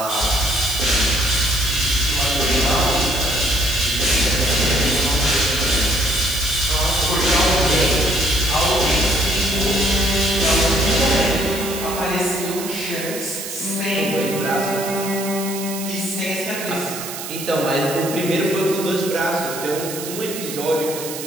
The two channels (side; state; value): right; noise; hiss, 9 dB below the sound